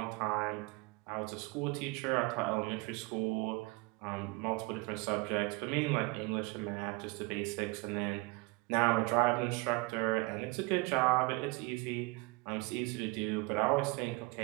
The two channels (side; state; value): left; quieter; 25.4 dB